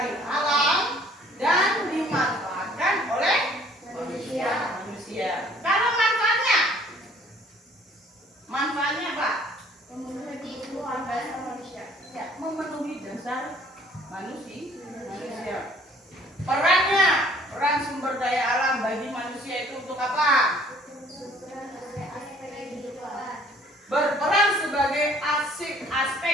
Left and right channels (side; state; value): both; normal; correlation 0.57